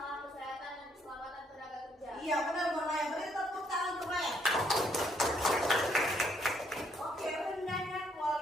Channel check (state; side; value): normal; both; correlation 0.70